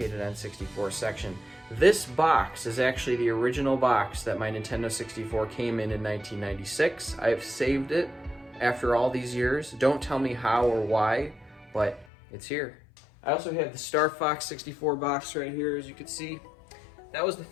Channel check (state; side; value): drops out; right; at 12.1 s